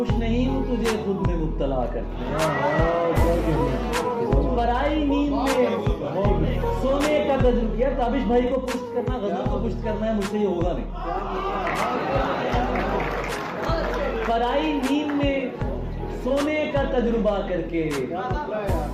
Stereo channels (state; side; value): identical; both; correlation 1.00